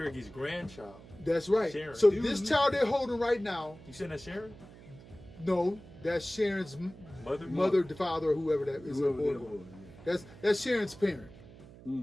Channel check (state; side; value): noise; right; hum, 19 dB below the sound